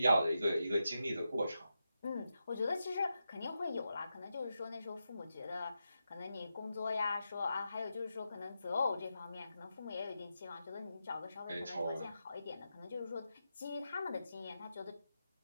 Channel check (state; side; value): inverted; both; correlation -0.87